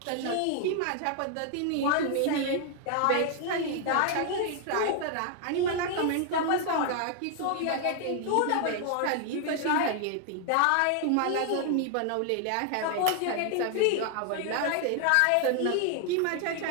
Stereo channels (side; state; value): both; different; correlation 0.00